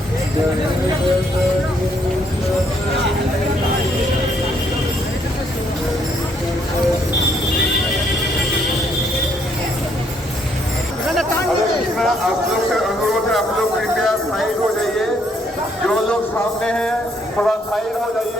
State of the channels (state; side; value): normal; both; correlation 0.70